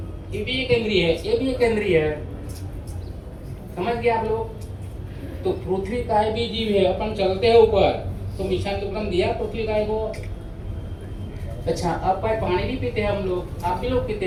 ये भी एक इंद्रिय है, ये भी एक इंद्रिय है, समझ गए आप लोग? तो पृथ्वी काय भी जीव है, अपन चलते हैं ऊपर, तो मिशान दुक्कड़म दिया पृथ्वी काय को। अच्छा, अब पानी भी पीते हैं हम लोग, आप भी लोग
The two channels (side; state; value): both; identical; correlation 1.00